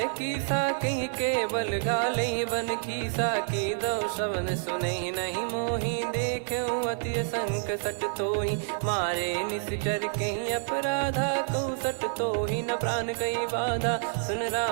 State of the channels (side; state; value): left; silent; digital silence